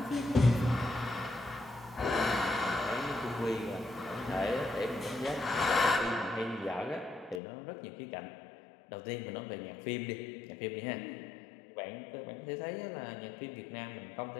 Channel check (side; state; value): right; drops out; at 7.4 s